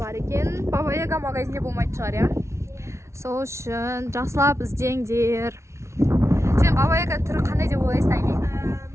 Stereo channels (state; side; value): late; left; 0.13 ms